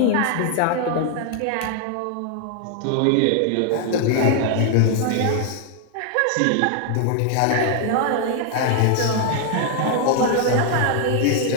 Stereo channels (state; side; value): different; both; correlation 0.00